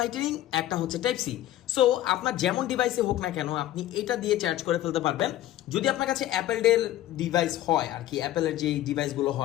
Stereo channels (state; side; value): quieter; right; 13.8 dB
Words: একটা হচ্ছে টাইপ সি। সো আপনার যেমন ডিভাইসে হোক না কেন আপনি এটা দিয়ে চার্জ করে ফেলতে পারবেন। যদি আপনার কাছে অ্যাপেল ডেল ডিভাইস হয় আর কি, অ্যাপেলের যে ডিভাইসগুলো